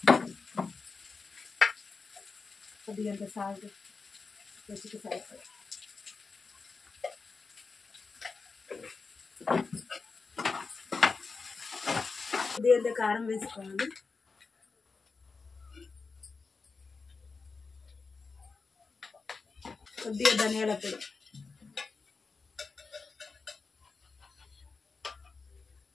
కొద్దిగా సాల్ట్, రుచికి సరిపడ, కొద్దిగా కారం వేసుకోవాలి, కొద్దిగా ధనియాల పొడి,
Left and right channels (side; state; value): right; quieter; 4.5 dB